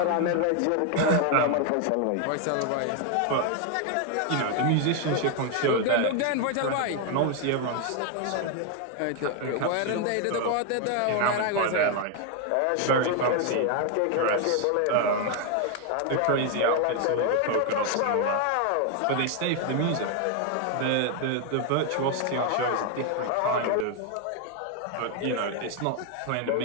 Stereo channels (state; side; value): different; both; correlation 0.01